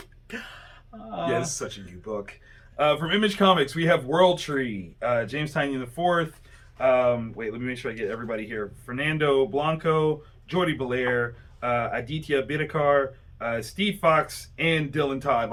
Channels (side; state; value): both; identical; correlation 1.00